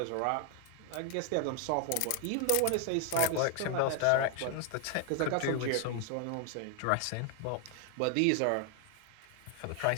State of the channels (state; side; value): different; both; correlation 0.00